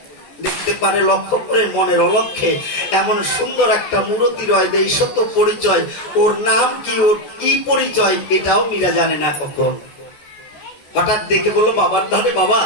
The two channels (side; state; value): right; late; 14 ms